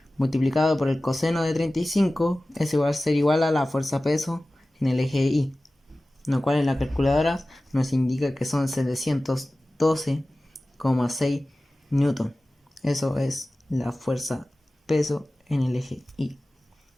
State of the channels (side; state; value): both; normal; correlation 0.97